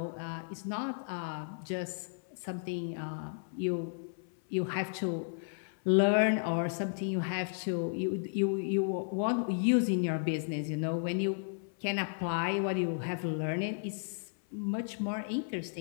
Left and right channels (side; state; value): right; silent; 55 dB below the other